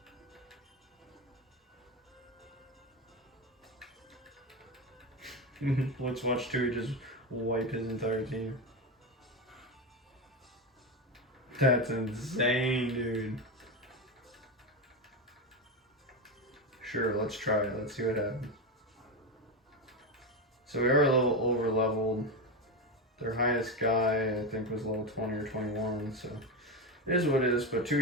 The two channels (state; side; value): normal; both; correlation 0.15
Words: Let's watch Tui just wipe his entire team. That's insane, dude. Sure, let's try it. Let's see what happens. So we are a little over leveled. Their highest guy, I think, was level 20 or 21, so it is what it is. But